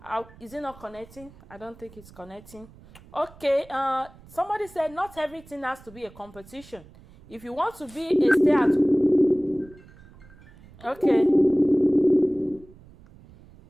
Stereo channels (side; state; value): right; noise; rumble, 23 dB below the sound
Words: is it not connecting? I don't think it's connecting. Okay, somebody said not everything has to be a competition. If you want to be a stay at, okay.